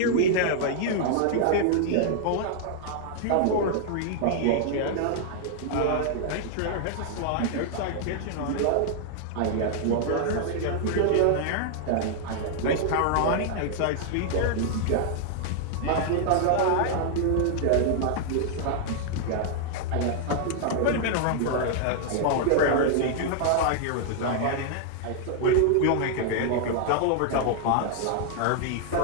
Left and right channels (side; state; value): both; different; correlation 0.00